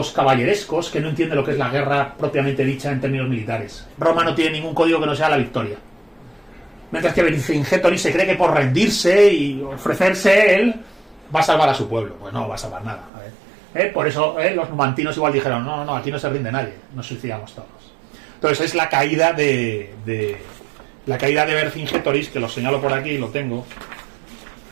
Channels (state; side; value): drops out; left; at 13.1 s